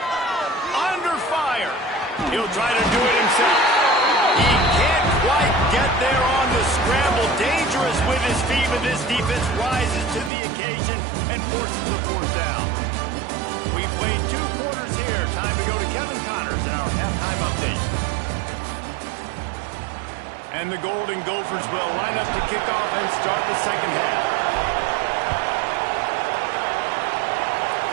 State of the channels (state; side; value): drops out; left; at 10.3 s